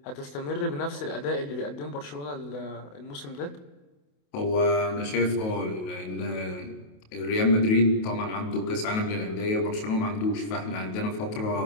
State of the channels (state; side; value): late; right; 28 ms